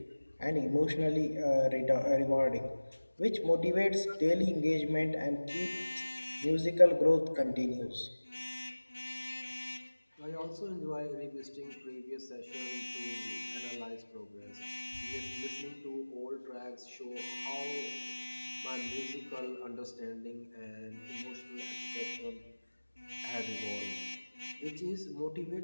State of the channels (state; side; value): inverted; both; correlation -1.00